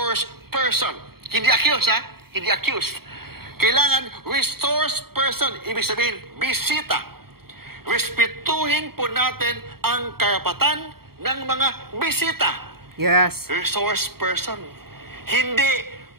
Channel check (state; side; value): late; left; 0.95 ms